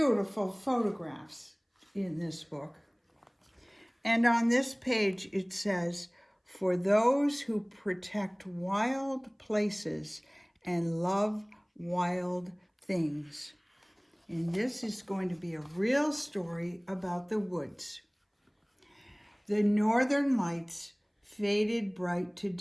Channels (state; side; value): identical; both; correlation 1.00